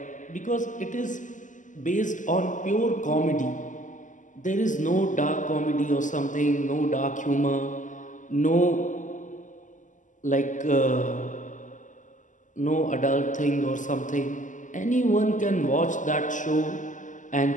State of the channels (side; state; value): right; late; 0.37 ms